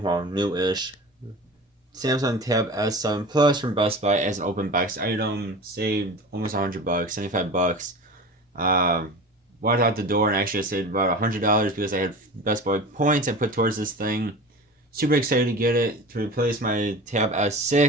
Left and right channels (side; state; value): both; normal; correlation 0.34